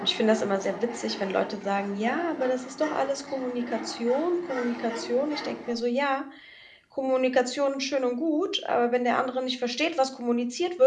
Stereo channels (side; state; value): both; identical; correlation 1.00